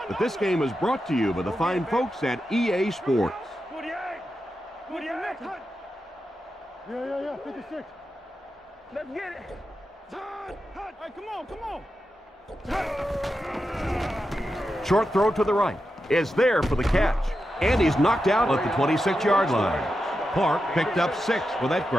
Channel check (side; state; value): both; normal; correlation 0.89